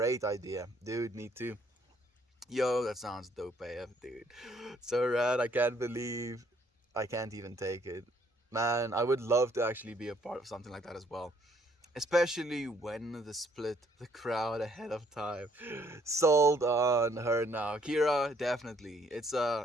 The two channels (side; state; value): both; normal; correlation 0.65